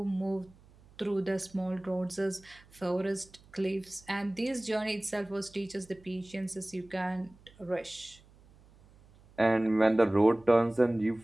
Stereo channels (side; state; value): right; noise; hum, 26 dB below the sound